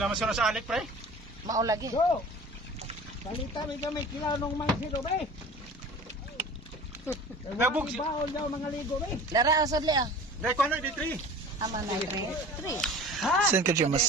mo sila sa alik, pre? Mao lagi. Go. Salita mi kami kilaw nung mangsido be. Nabog si... Baon daw mga ligo be. Lara asad li ah. Dahil ko ano, di 3. Ama na 3. Saan ka dyan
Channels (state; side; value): normal; both; correlation 0.40